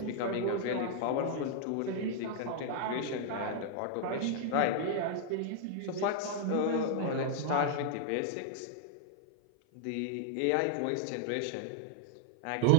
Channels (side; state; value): both; different; correlation 0.00